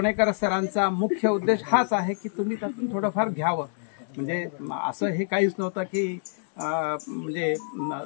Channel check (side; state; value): right; silent; digital silence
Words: सरांचा मुख्य उद्देश हाच आहे की तुम्ही त्यातून थोडंफार घ्यावं. म्हणजे असं हे काहीच नव्हतं की म्हणजे